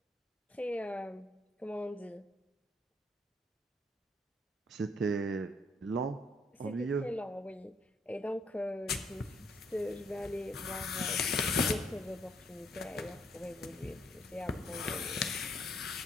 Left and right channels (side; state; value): both; normal; correlation 0.69